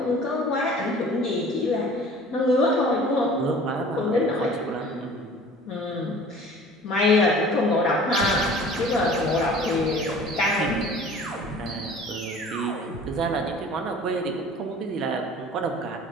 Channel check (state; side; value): normal; both; correlation 0.46